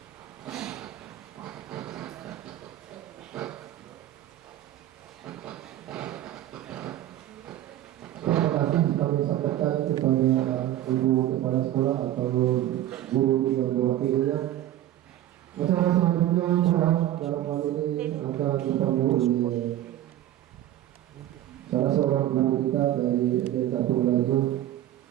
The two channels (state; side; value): quieter; left; 13.2 dB